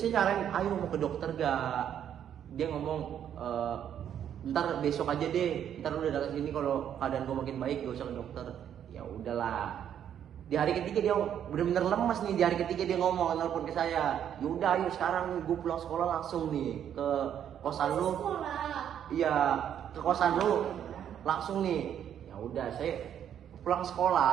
nyaranin, ayo mau ke dokter gak? Dia ngomong, ntar besok aja deh, ntar udah datang sini kalau keadaan gue makin baik gak usah ke dokter. Ya udahlah. Di hari ketiga dia bener-bener lemas nih, di hari ketiga dia ngomong, nelpon ke saya, yaudah ayo sekarang gue pulang sekolah langsung nih ke kosan lu. Sekolah. Iya, ke kosan lu langsung nih. Ya udah saya pulang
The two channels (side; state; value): left; quieter; 9.5 dB